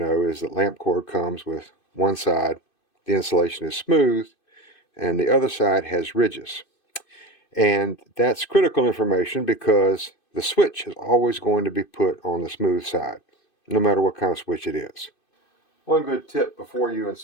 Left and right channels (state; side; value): late; right; 2.6 ms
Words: is that lamp cord comes with one side, the insulation is smooth, and the other side has ridges. And that's critical information because the switch is always going to be put on the smooth side, no matter what kind of switch it is. One good tip before you